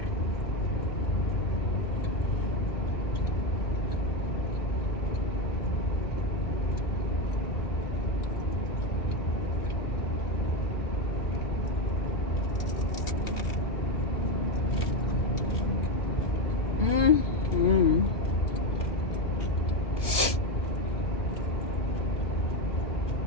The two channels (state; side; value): late; right; 2.4 ms